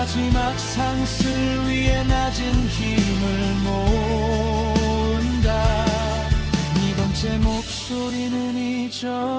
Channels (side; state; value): both; identical; correlation 1.00